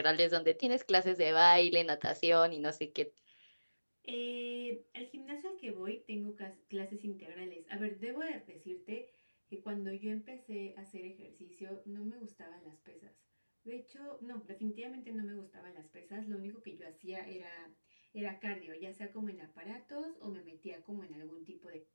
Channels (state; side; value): inverted; both; correlation -1.00